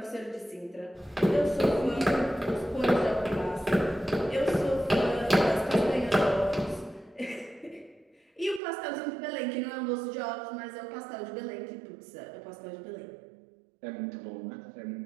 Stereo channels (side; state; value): left; drops out; at 8.6 s